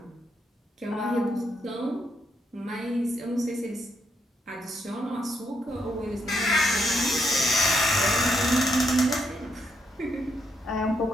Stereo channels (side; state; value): both; normal; correlation 0.77